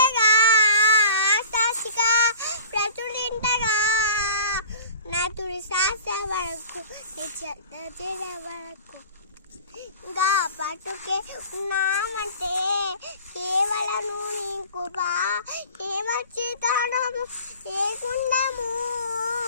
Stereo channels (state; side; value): inverted; both; correlation -0.44